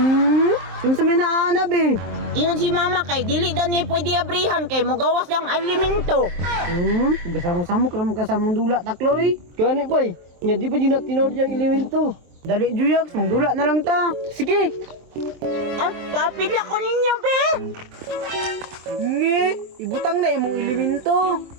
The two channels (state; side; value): late; left; 23 ms